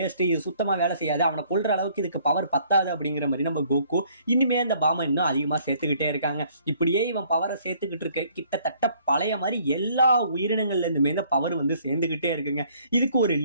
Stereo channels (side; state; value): both; inverted; correlation -0.61